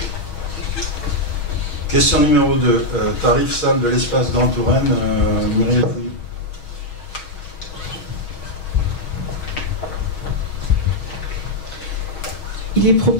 Question numéro 2. Tarif salle de l'espace Grand Touraine, Muriel Fouillou. Il est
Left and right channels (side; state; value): right; late; 6.3 ms